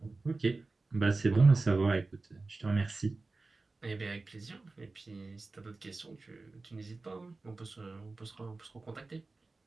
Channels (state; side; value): quieter; left; 3.6 dB